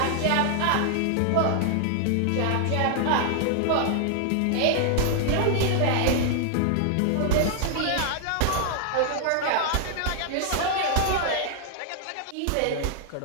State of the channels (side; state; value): both; different; correlation 0.00